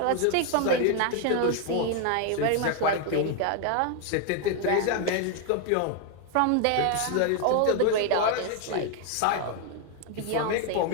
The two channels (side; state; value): both; different; correlation 0.00